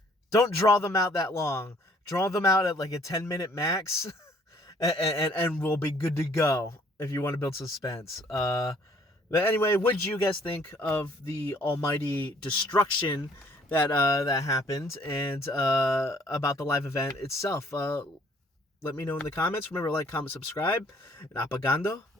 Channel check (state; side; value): normal; both; correlation 0.60